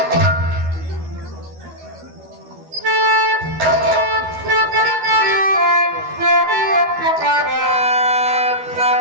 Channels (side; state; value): left; late; 12 ms